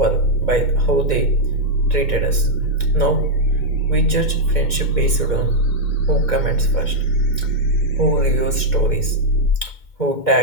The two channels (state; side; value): late; right; 2.1 ms